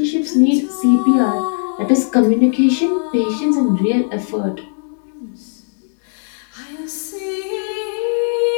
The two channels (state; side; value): silent; right; digital silence